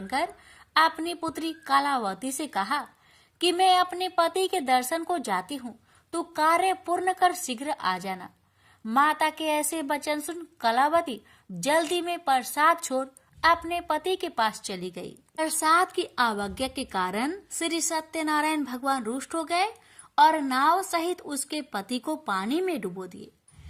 कर अपनी पुत्री कलावती से कहा कि मैं अपने पति के दर्शन को जाती हूँ, तू कार्य पूर्ण कर शीघ्र आ जाना। माता के ऐसे वचन सुन कलावती जल्दी में प्रसाद छोड़ अपने पति के पास चली गई। प्रसाद की अवज्ञा के कारण श्री सत्यनारायण भगवान रुष्ट हो गए और नाव सहित उसके पति को पानी में डुबो दिए।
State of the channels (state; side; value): identical; both; correlation 1.00